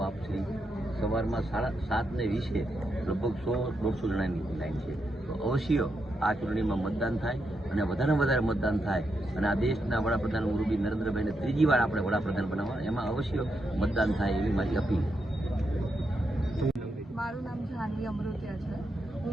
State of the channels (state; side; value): normal; both; correlation 0.83